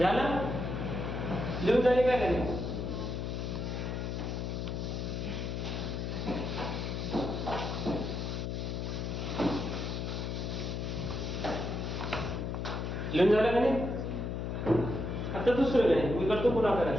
लिहून झाले काय नाही लिहून झालं का नाही. आता दुसरं नाही मी करतो पुन्हा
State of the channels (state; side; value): noise; left; hum, 3 dB below the sound